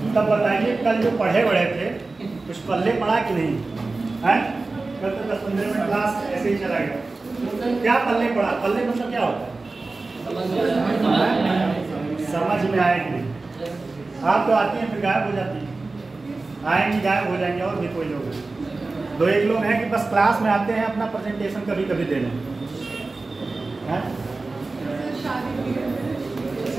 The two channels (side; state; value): left; quieter; 3.5 dB